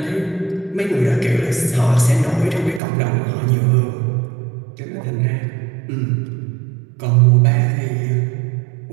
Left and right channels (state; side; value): drops out; left; at 2.8 s